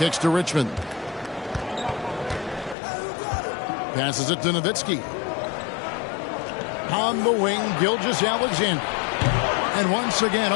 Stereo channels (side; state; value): right; drops out; at 2.8 s